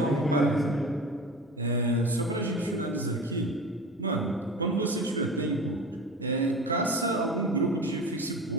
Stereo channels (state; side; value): normal; both; correlation 0.33